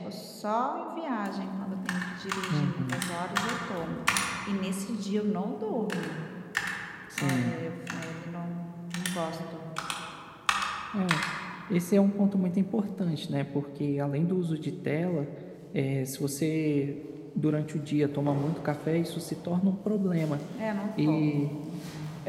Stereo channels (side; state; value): both; identical; correlation 1.00